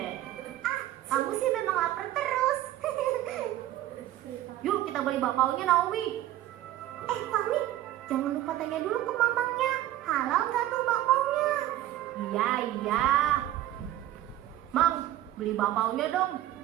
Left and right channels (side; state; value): left; quieter; 13.8 dB